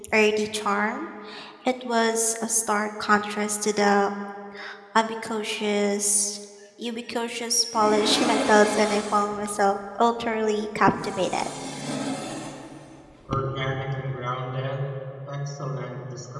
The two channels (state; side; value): identical; both; correlation 1.00